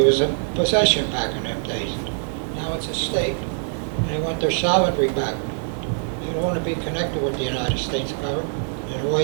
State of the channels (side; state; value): left; silent; 63 dB below the other